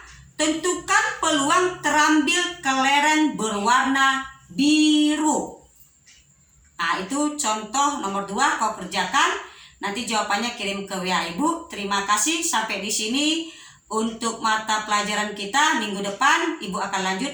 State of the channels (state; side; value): identical; both; correlation 1.00